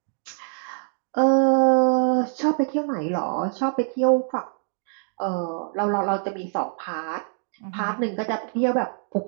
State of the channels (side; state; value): left; silent; digital silence